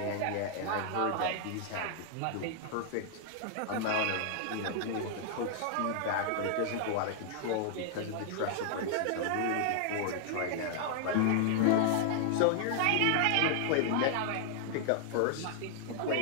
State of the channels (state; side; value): different; both; correlation 0.00